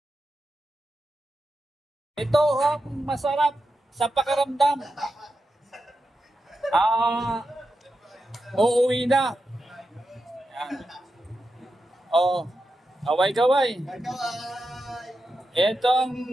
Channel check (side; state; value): both; normal; correlation 0.88